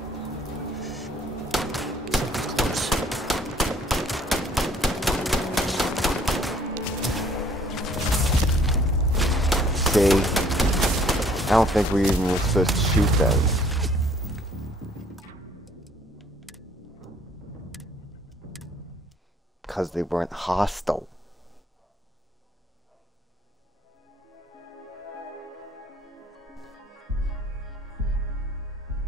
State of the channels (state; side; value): normal; both; correlation 0.59